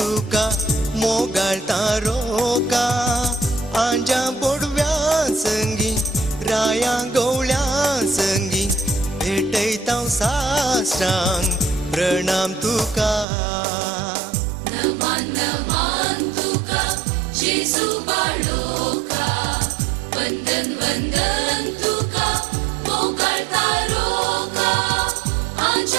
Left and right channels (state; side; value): drops out; left; at 13.2 s